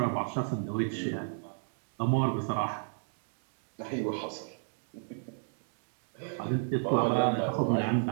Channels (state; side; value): silent; left; digital silence